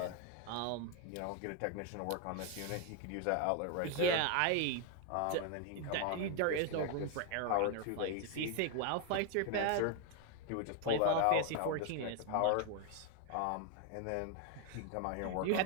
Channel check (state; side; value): different; both; correlation 0.01